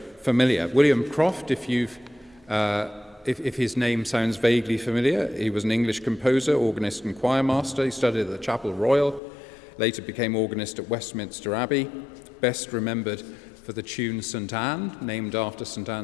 familiar. William Croft, if his name sounds vaguely familiar, he was an English composer, organist and choir master. He studied at the Chapel Royal, later became organist at Westminster Abbey, best remembered for the tune St Anne, named after St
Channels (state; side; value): drops out; right; at 9.2 s